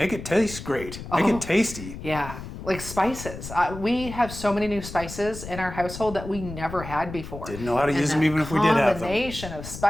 it taste great. Make it tasty. Yeah. Like spices. We have so many new spices in our household that we never had before. Didn't know how to use them even if we did have them. Combination of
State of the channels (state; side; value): noise; left; rumble, 11 dB below the sound